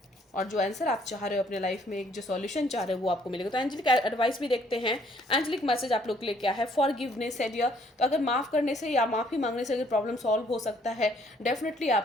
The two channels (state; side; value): normal; both; correlation 0.64